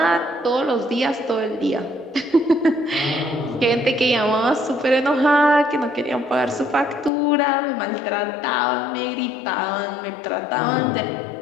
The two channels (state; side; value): drops out; right; at 7.1 s